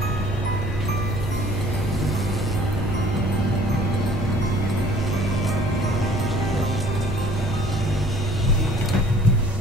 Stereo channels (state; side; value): normal; both; correlation 0.53